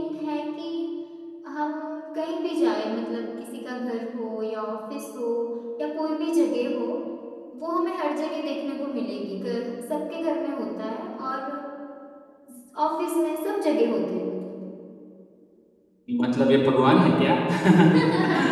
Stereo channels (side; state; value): both; identical; correlation 1.00